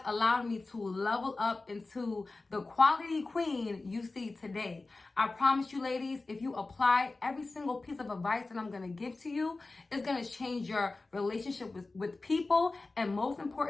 allowed me to level up into the quality queen you see today. I promise you ladies, if you apply every single piece of advice that I'm going to give to you, it's going to change your relationship with people, and most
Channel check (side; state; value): right; quieter; 3.4 dB